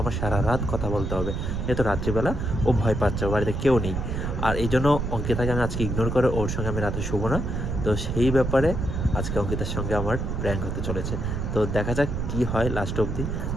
আমার সারা রাত কথা বলতে হবে। যেহেতু রাত্রিবেলা ও ভয় পাচ্ছে, বাড়িতে কেউ নেই। আর এই জন্য অঙ্কিতাকে আমি আজকে ইগনোর করে ওর সঙ্গে আমি রাতে শুবো না। তো সেই ব্যাপারে আজকে অঙ্কিতার সঙ্গে আমার প্র্যাঙ্ক হতে চলেছে। তো দেখা যাক কী হয় লাস্ট অবধি।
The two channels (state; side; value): noise; right; rumble, 2 dB below the sound